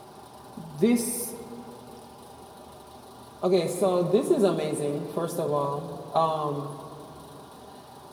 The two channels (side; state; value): both; identical; correlation 1.00